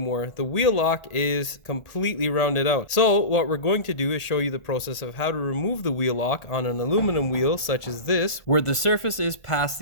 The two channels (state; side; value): late; right; 1.4 ms